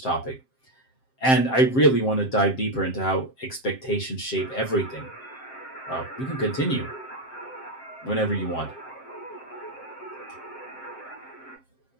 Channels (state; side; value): late; right; 7.6 ms